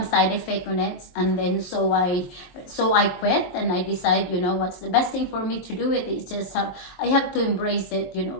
side effect on it, and then so I quit, and I decide, what's the best thing for me to do. It's just I have to embrace it.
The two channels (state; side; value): late; right; 23 ms